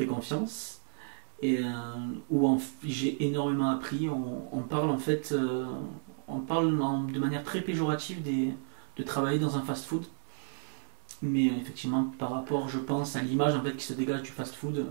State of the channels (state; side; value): silent; left; 56 dB below the other